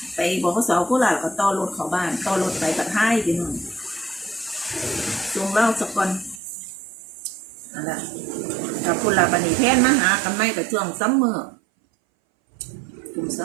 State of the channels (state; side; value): drops out; left; at 6.4 s